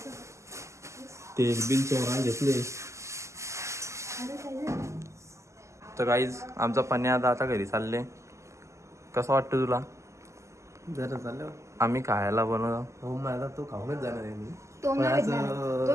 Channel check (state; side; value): late; left; 0.14 ms